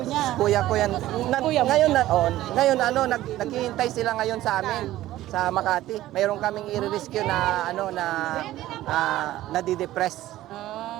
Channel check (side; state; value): left; quieter; 15.0 dB